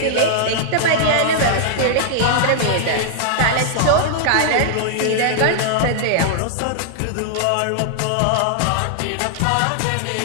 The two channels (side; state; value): both; different; correlation -0.01